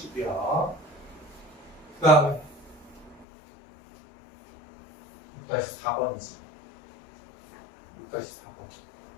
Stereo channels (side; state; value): right; drops out; at 3.2 s